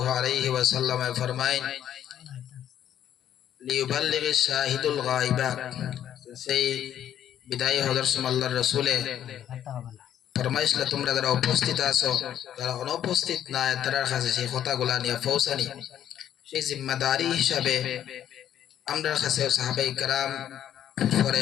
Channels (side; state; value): right; quieter; 10.5 dB